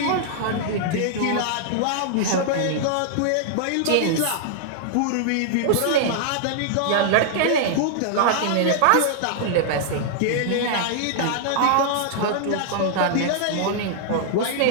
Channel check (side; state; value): both; different; correlation -0.01